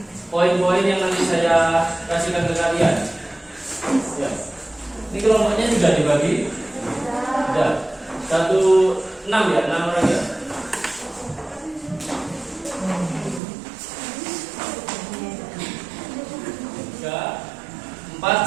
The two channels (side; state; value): left; drops out; at 13.4 s